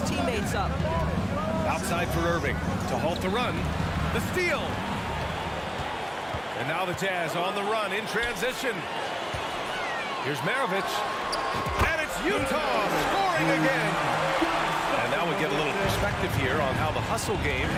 teammates up. Outside for Irving to halt the run. The steal. And now the Jazz on the run in transition. Here's Maravich. And it's Utah scoring again. And now we get a little perspective here on how the hustle game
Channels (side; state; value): both; identical; correlation 1.00